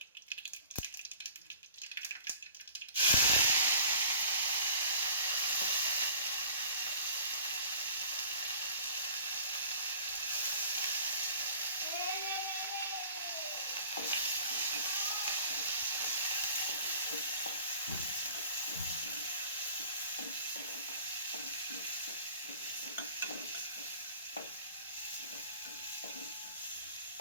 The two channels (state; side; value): inverted; both; correlation -0.47